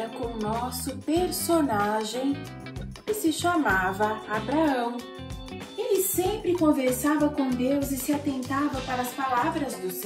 com o nosso personagem, que se chamava Abraão. Ele sempre conversava com Deus e se atentava para as palavras do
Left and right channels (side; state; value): both; identical; correlation 1.00